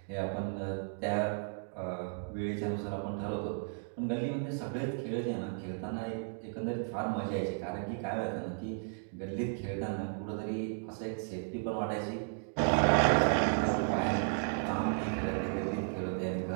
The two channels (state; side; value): silent; left; 55 dB below the other